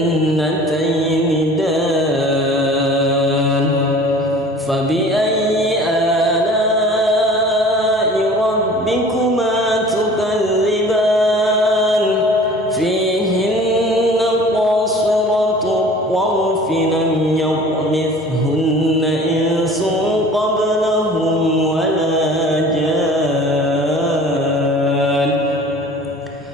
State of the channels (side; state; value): both; normal; correlation 0.46